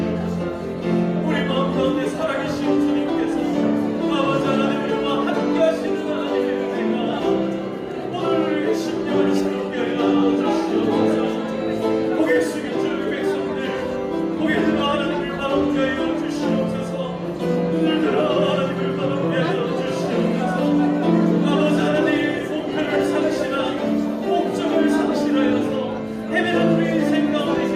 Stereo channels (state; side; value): identical; both; correlation 1.00